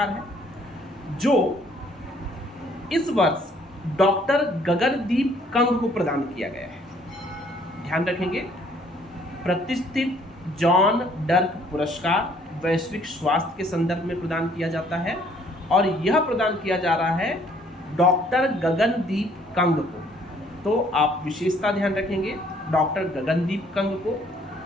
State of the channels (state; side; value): normal; both; correlation 0.62